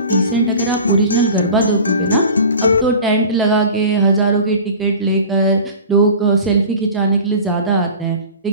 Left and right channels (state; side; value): inverted; both; correlation -0.38